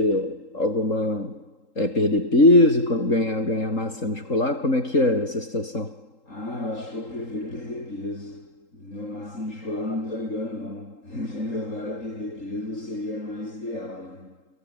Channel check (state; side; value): late; right; 3.8 ms